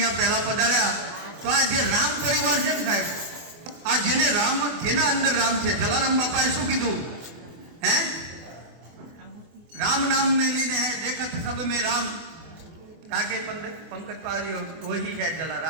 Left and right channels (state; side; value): late; left; 24 ms